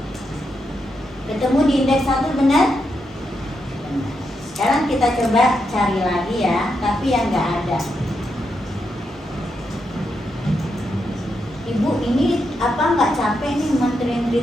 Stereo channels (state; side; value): normal; both; correlation 0.83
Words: Ketemu di indeks 1 benar? Benar. Sekarang kita coba cari lagi ya, tapi yang nggak ada. Ibu ini apa nggak capek nih